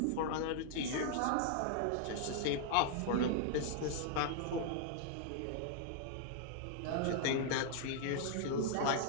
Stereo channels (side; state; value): both; different; correlation -0.01